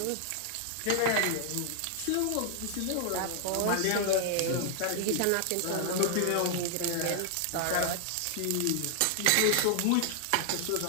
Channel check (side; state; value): both; different; correlation 0.00